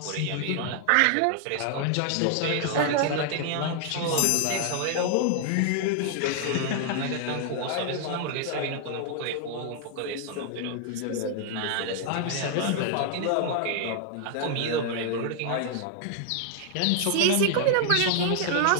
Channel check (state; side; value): different; both; correlation 0.00